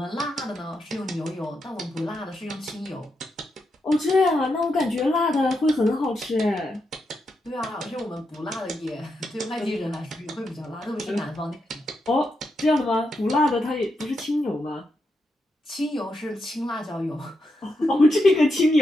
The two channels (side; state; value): both; normal; correlation 0.84